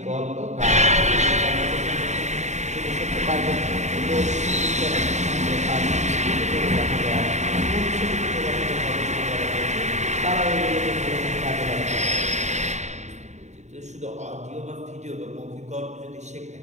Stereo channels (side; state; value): left; late; 0.34 ms